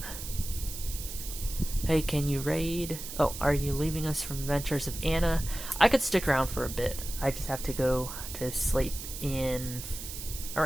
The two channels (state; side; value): noise; right; hiss, 9 dB below the sound